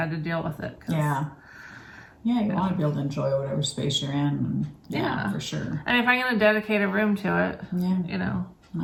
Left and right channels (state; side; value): identical; both; correlation 1.00